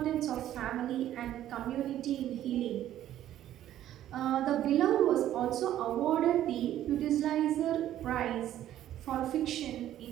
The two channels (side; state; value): left; quieter; 12.3 dB